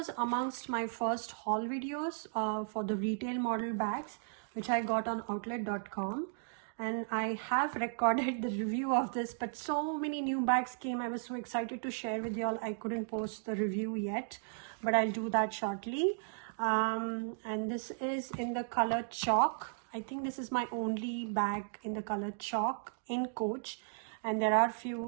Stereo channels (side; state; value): left; silent; digital silence